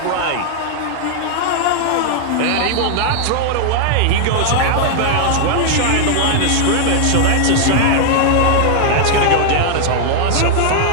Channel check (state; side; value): different; both; correlation 0.00